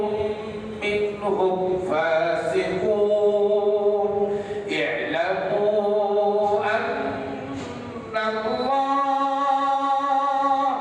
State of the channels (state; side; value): identical; both; correlation 1.00